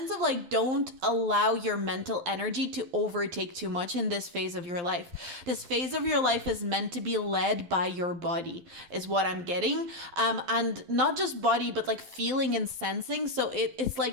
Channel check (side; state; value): left; late; 12 ms